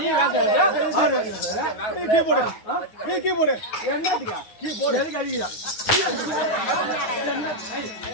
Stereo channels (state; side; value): late; right; 9.6 ms